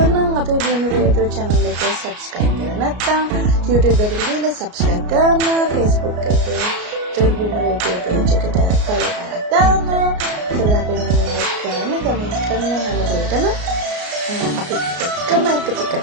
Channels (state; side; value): late; left; 33 ms